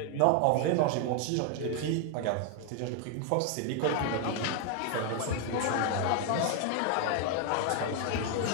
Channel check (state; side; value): different; both; correlation 0.00